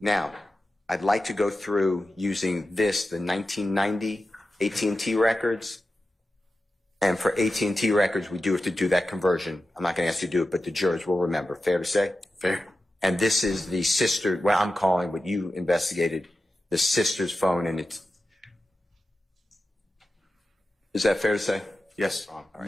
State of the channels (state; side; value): normal; both; correlation 0.92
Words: Now, I'd like to go through using the 1990 AT&T records. And for AT&T records, we do have to do that conversion. I'm not going to ask you to do it, but the jurors will remember. Fair to say? Fair. And this is the sister, well, I'm calling what you investigated, the sister's phone, and it's, is that fair to say? Yes. All right.